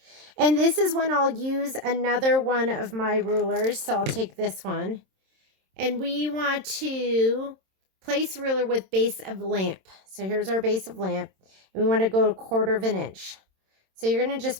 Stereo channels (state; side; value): late; left; 27 ms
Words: And this is when I'll use another one of my rulers. So I'll take this one. And we want to place ruler with base of lamp. So here's our base of lamp. And we want to go 1/4 inch. So you're going to